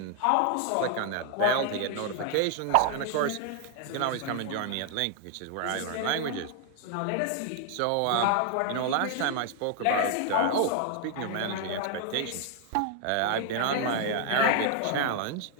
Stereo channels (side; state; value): both; different; correlation 0.00